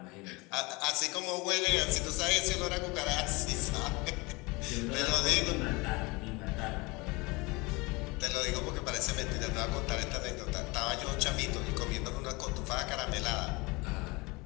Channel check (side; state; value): right; quieter; 25.2 dB